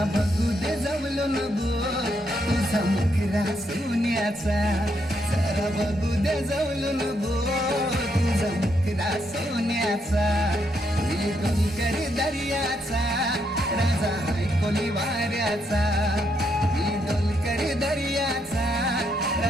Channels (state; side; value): normal; both; correlation 0.77